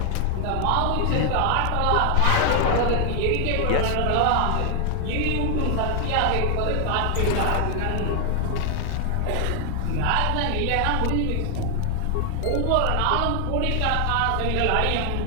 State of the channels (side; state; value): both; different; correlation 0.00